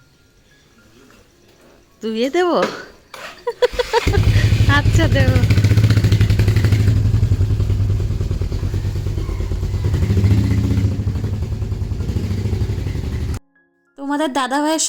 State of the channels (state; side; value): identical; both; correlation 1.00